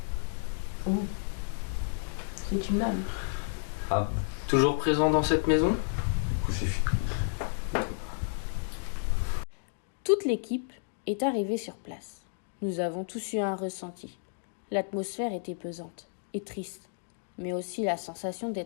Oh. C'est une âme. Âme. Toujours présent dans cette maison? Crucifix. Toute l'équipe est arrivée sur place. Nous avons tous eu un ressenti. L'atmosphère était pesante et triste, mais aussi la sensation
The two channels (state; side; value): silent; right; digital silence